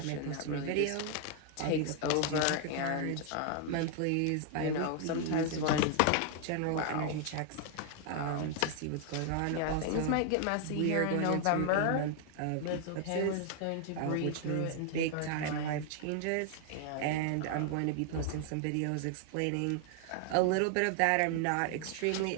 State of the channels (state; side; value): different; both; correlation 0.00